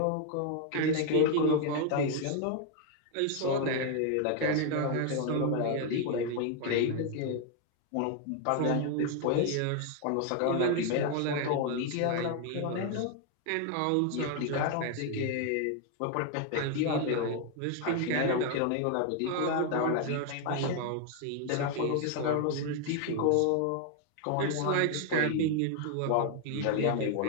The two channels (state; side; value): different; both; correlation 0.01